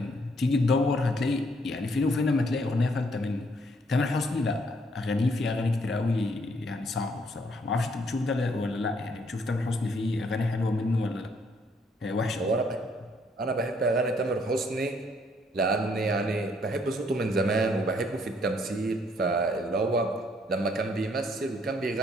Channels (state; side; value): normal; both; correlation 0.68